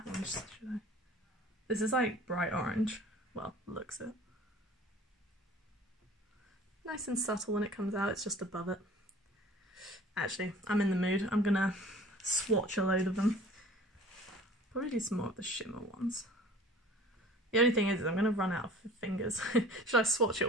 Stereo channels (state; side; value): normal; both; correlation 0.46